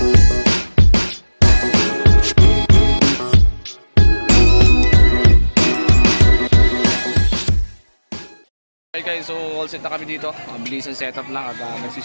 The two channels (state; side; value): inverted; both; correlation -1.00